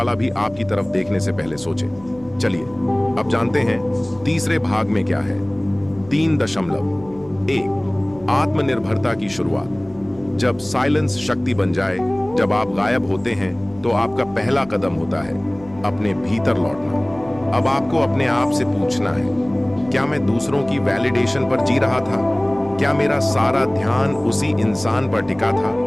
भी आपकी तरफ देखने से पहले सोचे। चलिए अब जानते हैं तीसरे भाग में क्या है। 3.1 आत्मनिर्भरता की शुरुआत। जब साइलेंस शक्ति बन जाए, जब आप गायब होते हैं तो आपका पहला कदम होता है अपने भीतर लौटना। अब आपको अपने आप से पूछना है, क्या मैं दूसरों की वैलिडेशन पर जी रहा था? क्या मेरा सारा ध्यान उसी इंसान पर टिका था?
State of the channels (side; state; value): right; noise; hum, 22 dB below the sound